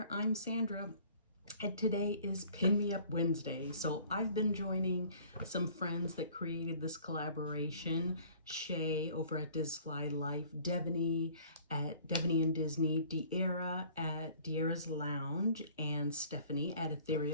I'm Sandra, and today is Pin Me Up Wednesday. So I've been joining some friends that created this collaboration. Shae over at Disfly Life, Devoney at Devoney and Disney, Dierra at Dierra's Lounge, and Stephanie at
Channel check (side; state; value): both; inverted; correlation -0.53